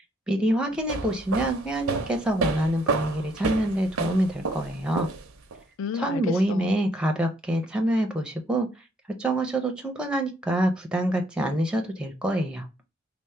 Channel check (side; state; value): both; normal; correlation 0.68